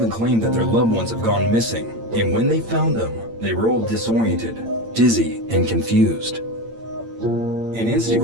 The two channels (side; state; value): left; late; 8.8 ms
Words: claim that their loved ones have gone missing, and when they found them, they were all disoriented, dizzy, and confused. An